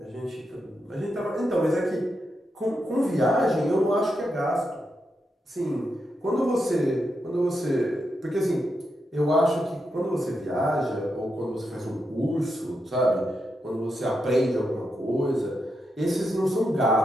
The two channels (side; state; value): both; normal; correlation 0.85